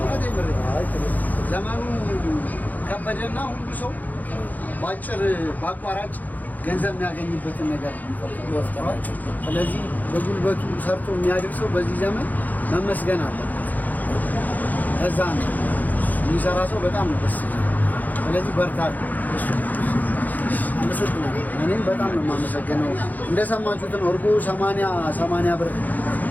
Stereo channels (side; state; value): right; late; 0.082 ms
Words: ነው። ዘመኑ ከበደና ሁሉ ሰው ባጭር ባቋራጭ ገንዘብ የሚያገኝበትን ነገር ይወስዳል። ስለዚህ በጉልበቱ ሰርቶ የሚያድር ሰው በዚህ ዘመን መመስገን አለበት። እዛ ነው የሚሰራ ሰው በጣም ነው ደስ ይላል። ስለዚህ በርታ። እኔም በጣም ነው የማመሰግነው። እንደሰማችሁት ነው እርጎ 80 ብር